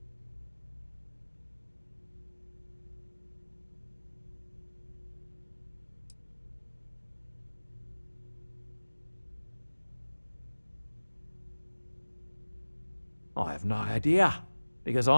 I have no idea, because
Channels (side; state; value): both; inverted; correlation -1.00